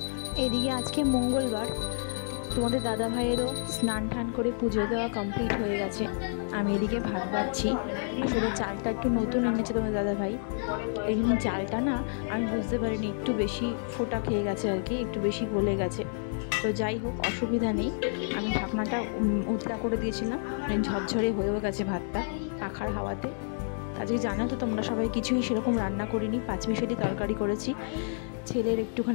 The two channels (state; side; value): silent; right; digital silence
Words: এদিকে আজকে মঙ্গলবার, তোমাদের দাদা ভাইয়েরও স্নান টান করে পুজো দেওয়া কমপ্লিট হয়ে গেছে। আমি এদিকে ভাত বাড়ছি। আসলে চালটা একটু নতুন এনেছে তোমাদের দাদা ভাই, এই জন্য চালটা না আমি বুঝতে পারিনি, একটু বেশি ফোঁটা খেয়ে গেছে আর কি, একটু বেশি গলে গেছে। তো যাই হোক, অসুবিধা নেই। আমি ঢাকনাটা উতলা করে দিয়েছিলাম, ঝরঝরে হয়েও গেছে ভাতটা পাখার হাওয়াতে। আজকে জানো তো তোমরা সবাই, কিছুই সেরকম রান্না করিনি, পাঁচমিশালি তরকারি করেছি, ছেলের